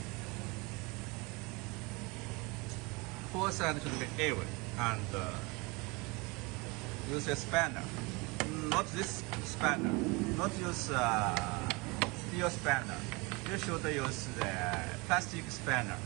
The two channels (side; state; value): left; quieter; 26.6 dB